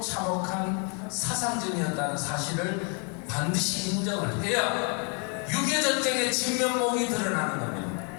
참혹한 사상전이었다는 사실을 반드시 인정을 해야 6.25 전쟁의 진면목이 드러나는 겁니다.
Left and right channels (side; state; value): right; quieter; 37.5 dB